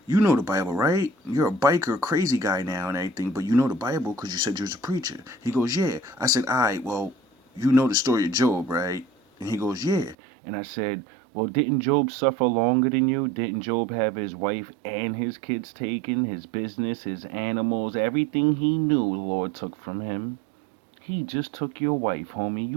you know the Bible, right? You're a biker, crazy guy now and everything, but you know the Bible because you said you was a preacher. He goes, yeah. I said, all right, well, you know the story of Job, right? And he goes, yeah. And I said, well, didn't Job suffer longer than you? Didn't Job have his wife and his kids taken, his business, his animals, everything he knew the Lord took from him? He just took your wife, homie.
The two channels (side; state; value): left; drops out; at 10.2 s